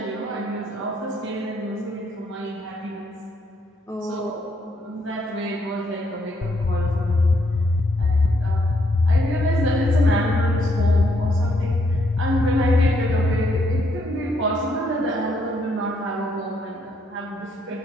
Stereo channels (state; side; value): normal; both; correlation 0.73